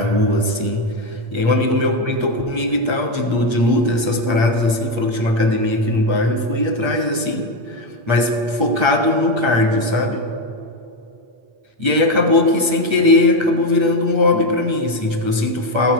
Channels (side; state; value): left; late; 8.6 ms